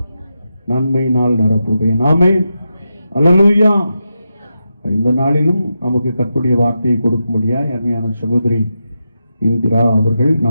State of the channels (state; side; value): inverted; both; correlation -0.88